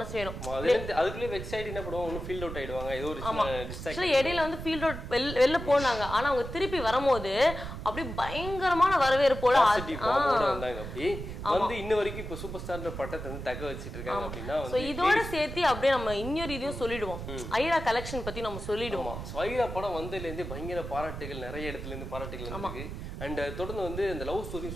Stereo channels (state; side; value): noise; right; rumble, 8 dB below the sound